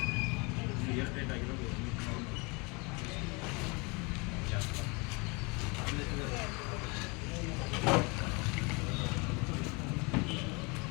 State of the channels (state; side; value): quieter; right; 29.2 dB